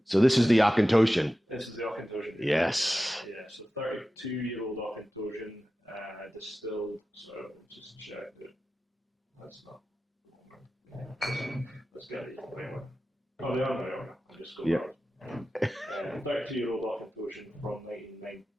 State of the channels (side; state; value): both; normal; correlation 0.94